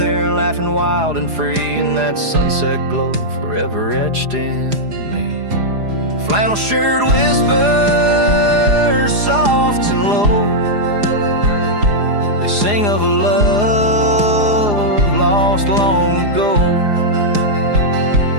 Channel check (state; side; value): late; left; 4.9 ms